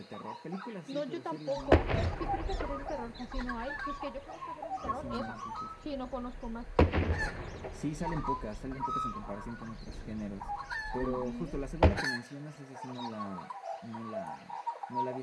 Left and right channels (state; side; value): identical; both; correlation 1.00